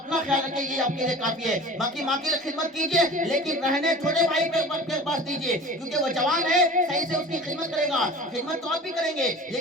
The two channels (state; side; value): normal; both; correlation 0.39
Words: خیال رکھیں، یہ آپ کے لیے کافی ہے۔ باقی ماں کی خدمت کیجئے، لیکن رہنے چھوٹے بھائی کے پاس دیجئے، کیونکہ وہ جوان ہے، صحیح سے اس کی خدمت کرے گا، خدمت تو آپ بھی کریں گے،